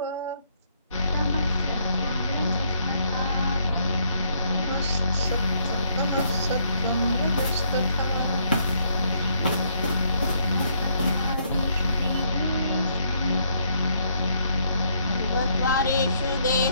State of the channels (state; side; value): inverted; both; correlation -0.71